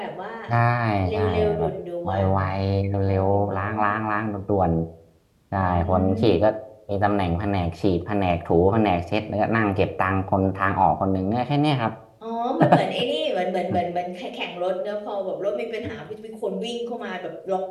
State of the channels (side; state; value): both; identical; correlation 1.00